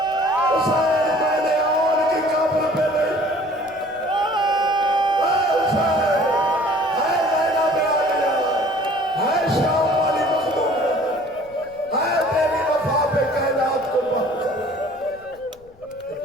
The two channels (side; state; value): left; noise; rumble, 28 dB below the sound